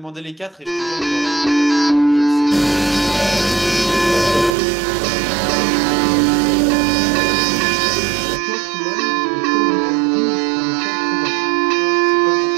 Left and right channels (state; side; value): drops out; left; at 4.5 s